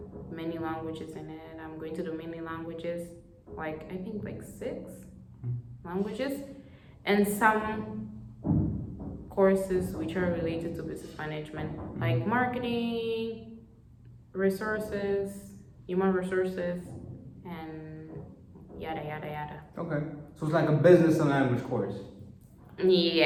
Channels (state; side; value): identical; both; correlation 1.00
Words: many languages in it. I'm going to do many languages, I think 6 languages, and some courses which are related to business management, like marketing, resources, human resources, and yada yada yada. Okay, so it's like a business and language course.